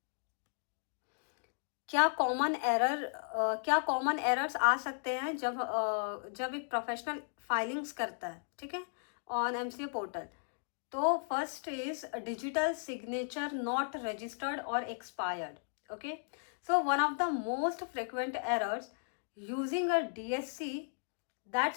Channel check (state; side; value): silent; right; digital silence